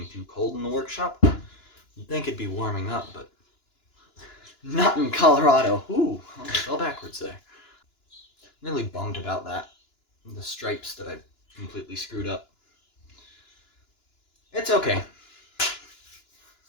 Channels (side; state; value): right; late; 2.9 ms